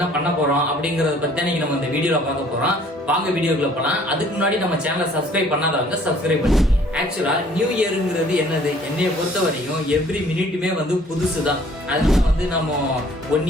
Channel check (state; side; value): normal; both; correlation 0.56